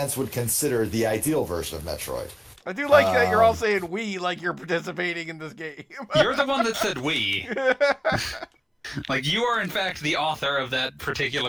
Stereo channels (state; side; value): identical; both; correlation 1.00